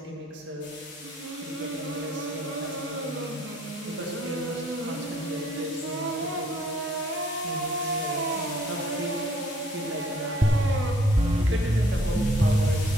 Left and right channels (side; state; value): both; normal; correlation 0.61